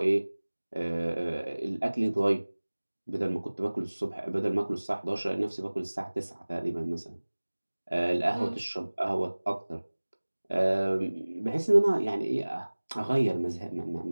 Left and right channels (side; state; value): both; inverted; correlation -1.00